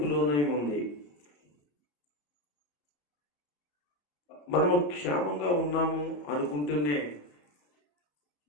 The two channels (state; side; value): late; right; 34 ms